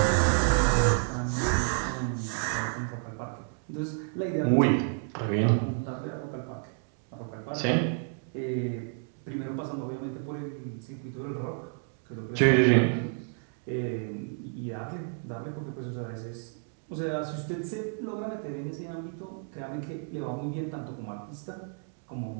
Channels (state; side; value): silent; left; 57 dB below the other